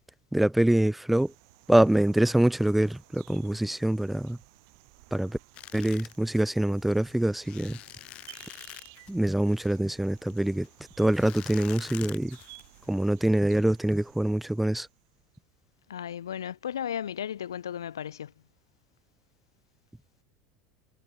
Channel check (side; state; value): both; normal; correlation 0.96